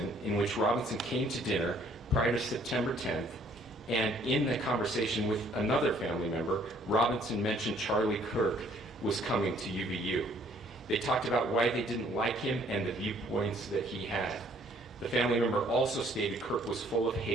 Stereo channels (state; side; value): normal; both; correlation 0.61